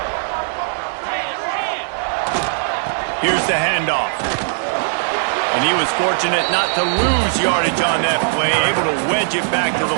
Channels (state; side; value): silent; left; 67 dB below the other